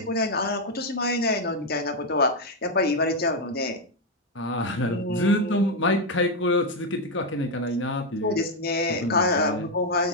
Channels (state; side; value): normal; both; correlation 0.03